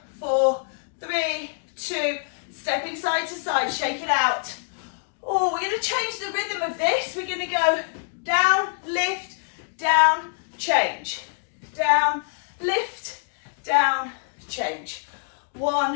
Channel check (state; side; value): silent; right; digital silence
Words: 4, 3, 2, stepping side to side, shake it out. Oh, we're going to change the rhythm of this. We're going to go down, lift, down, change. Down, lift, down, change.